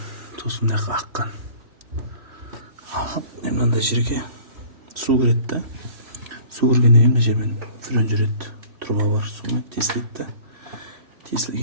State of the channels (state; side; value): late; left; 3.1 ms